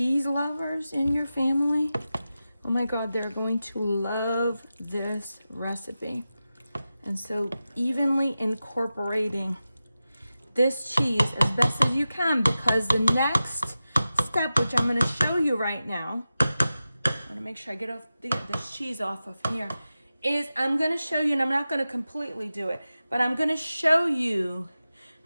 lovers in your family, oh my God, they're going to love this recipe. And so evenly incorporating this cheese as best as you can, because the next step, which I'm gonna show you right now, I'm gonna make sure I get this cheese off of here, is I'm gonna show you, and I'm not gonna completely do it, but I'm gonna show you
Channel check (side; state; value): both; inverted; correlation -0.93